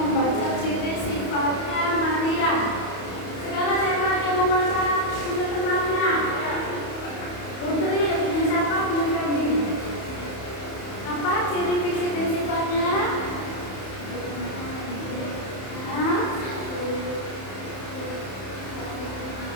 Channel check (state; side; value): late; right; 31 ms